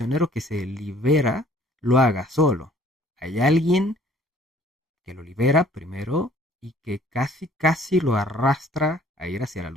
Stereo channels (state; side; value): normal; both; correlation 0.57